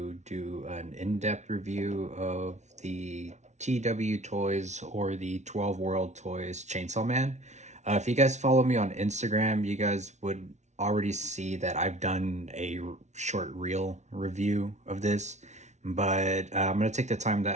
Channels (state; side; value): late; left; 0.33 ms